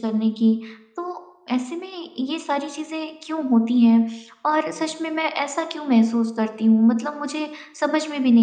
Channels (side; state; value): both; identical; correlation 1.00